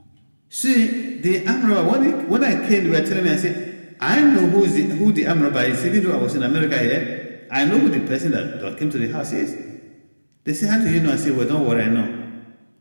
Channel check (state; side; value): inverted; both; correlation -1.00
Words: See, the armed robber, when I came, they were telling me, I said, I know who the armed robber is. Even though I was in America here, I know who the person that came to the house is. They say, how do you know? I say, well, don't worry, I know.